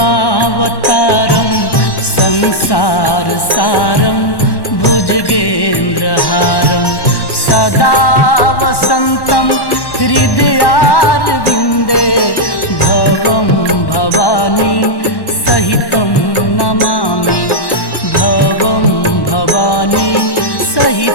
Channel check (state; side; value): late; right; 1.1 ms